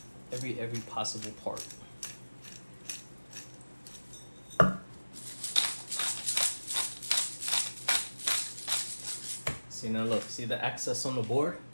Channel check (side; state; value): both; inverted; correlation -1.00